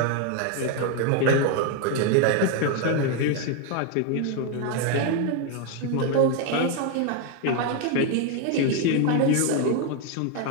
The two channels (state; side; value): different; both; correlation 0.01